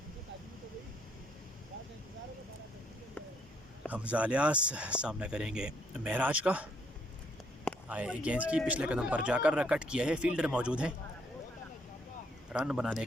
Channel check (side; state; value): both; normal; correlation 0.70